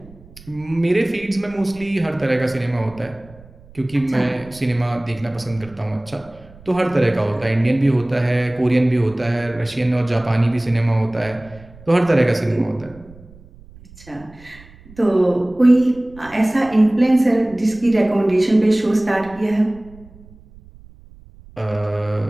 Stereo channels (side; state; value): right; noise; rumble, 22 dB below the sound